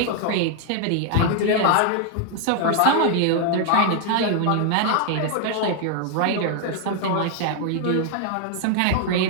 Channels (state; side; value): different; both; correlation 0.00